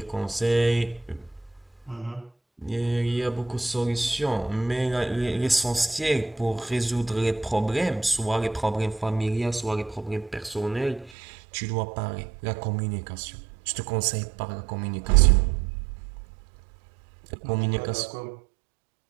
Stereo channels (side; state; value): left; drops out; at 11.1 s